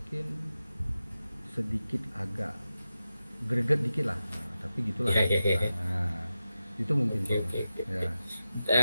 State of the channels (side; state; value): both; inverted; correlation -0.92